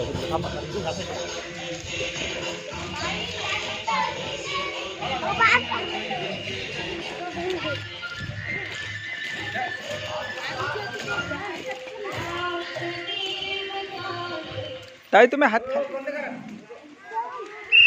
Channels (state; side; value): identical; both; correlation 1.00